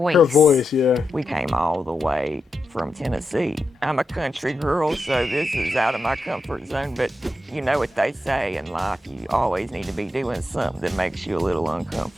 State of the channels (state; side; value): normal; both; correlation 0.87